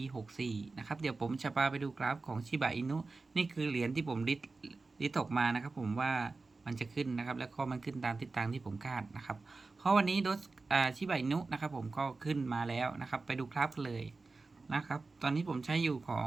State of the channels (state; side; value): quieter; left; 3.8 dB